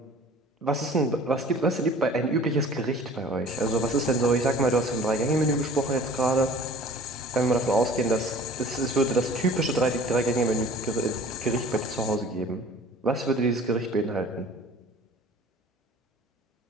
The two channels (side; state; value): both; normal; correlation 0.47